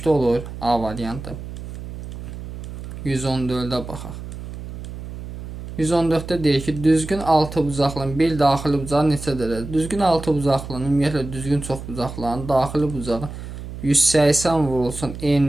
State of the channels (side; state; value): right; noise; hum, 10 dB below the sound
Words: olur A variantı. 114-də baxaq. 114-də deyir ki, düzgün 6 bucaqlının bir daxili bucağı neçə dərəcədir? Düzgün 6 bucaqlının, ümumiyyətlə düzgün çox bucaqların daxili bucağı 180 vurulsun